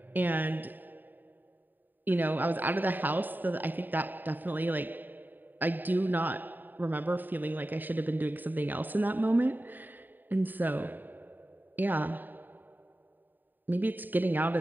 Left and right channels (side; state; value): left; late; 0.090 ms